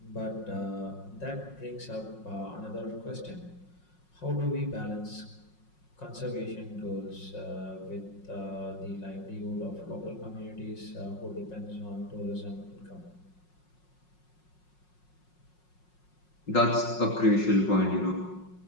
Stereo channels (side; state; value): right; late; 5.5 ms